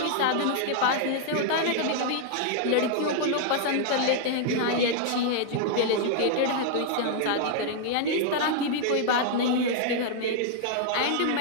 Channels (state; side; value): different; both; correlation -0.01